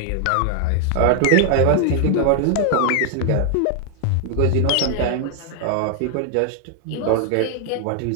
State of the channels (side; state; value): both; different; correlation 0.00